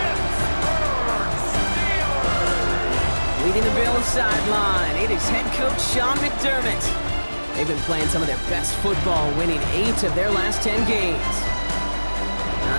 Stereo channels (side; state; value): both; inverted; correlation -1.00